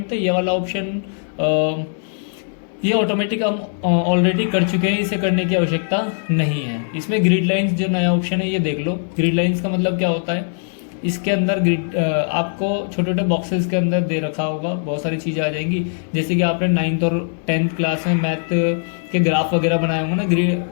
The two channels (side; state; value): right; silent; 66 dB below the other